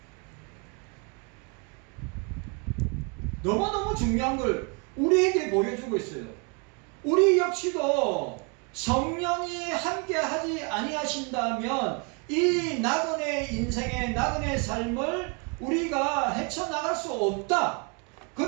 너무너무 중요한 걸 우리에게 보여주고 있어요. 우리 역시도 성령이 함께 하지 아니하신다면 이 나그네 인생의 나그네 삶을 우리가 헤쳐나갈 수 없다.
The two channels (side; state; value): left; quieter; 33.9 dB